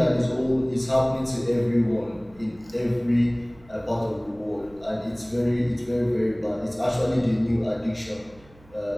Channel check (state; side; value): noise; right; hum, 26 dB below the sound